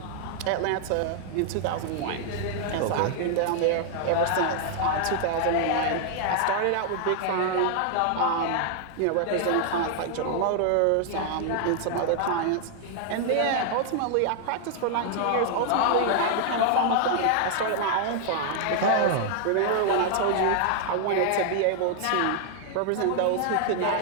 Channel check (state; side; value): different; both; correlation 0.00